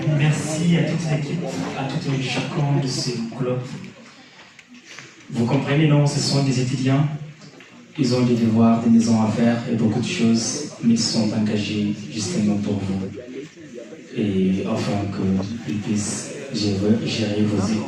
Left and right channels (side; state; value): both; identical; correlation 1.00